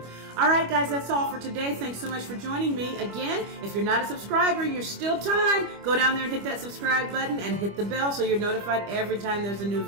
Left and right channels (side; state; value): left; late; 25 ms